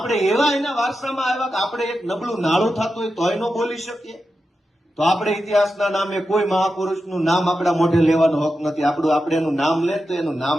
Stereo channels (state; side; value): normal; both; correlation 0.90